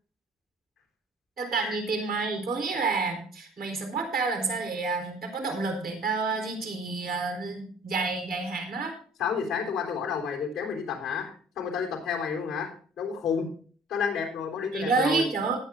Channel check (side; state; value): both; normal; correlation 0.50